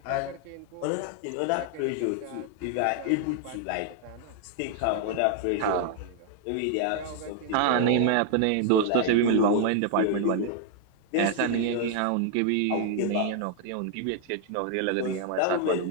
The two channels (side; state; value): both; different; correlation 0.00